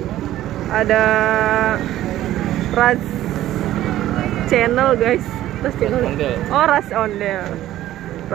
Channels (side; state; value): left; quieter; 13.8 dB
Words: ada Ras Channel guys, Ras Channel. Oh, Ras